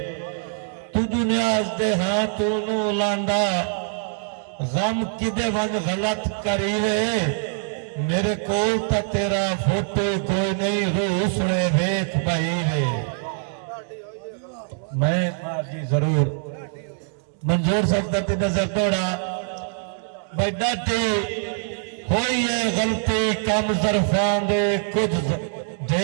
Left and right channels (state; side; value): silent; left; digital silence